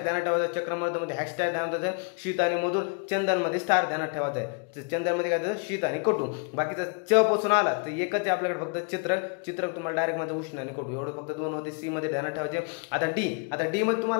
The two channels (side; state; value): right; quieter; 37.3 dB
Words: ध्यानात ठेवायचं. चक्रमर्द मध्ये हॅशटॅग ध्यानात ठेवायचं. शीत आणि मधुर. चंदन मध्ये स्टार ध्यानात ठेवायचं आहे. चंदन मध्ये काय शीत आणि कटू. बाकीचा च पासून आला तर एकच आहे आपल्याकडे फक्त चित्रक तुम्हाला डायरेक्ट मध्ये उष्ण आणि कटू. एवढं फक्त 2 होते. सी मध्ये ध्यानात ठेवायचे. आता डी मध्ये